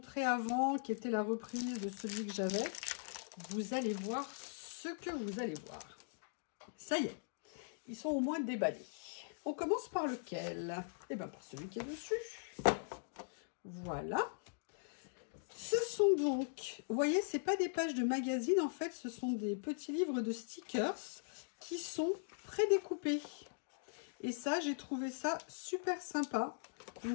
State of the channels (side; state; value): right; silent; digital silence